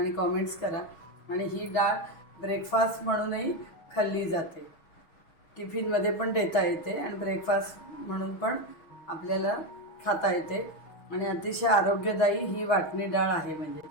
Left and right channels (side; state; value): right; late; 6.3 ms